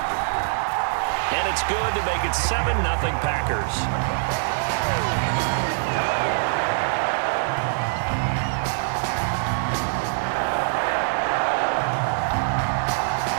And it's good to make it 7-0 Packers.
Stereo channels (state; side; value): silent; left; digital silence